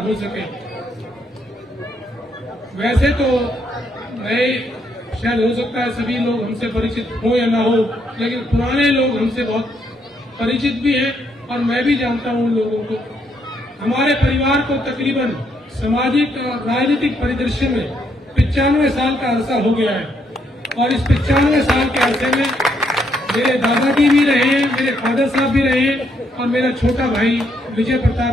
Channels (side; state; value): both; normal; correlation 0.74